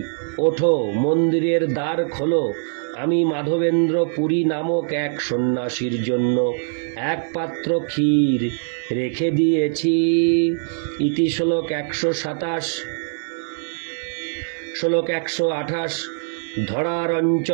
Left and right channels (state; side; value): silent; left; 64 dB below the other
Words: ওঠো, মন্দিরের দ্বার খোলো, আমি মাধবেন্দ্র পুরী নামক এক সন্ন্যাসীর জন্য এক পাত্র ক্ষীর রেখে দিয়েছি। ইতি শ্লোক 127। শ্লোক 128। ধরার